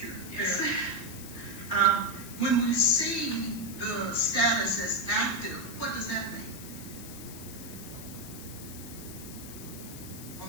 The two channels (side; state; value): left; noise; hiss, 13 dB below the sound